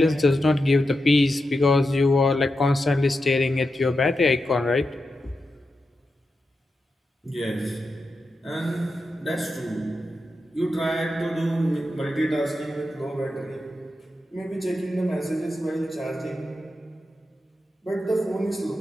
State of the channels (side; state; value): both; normal; correlation 0.88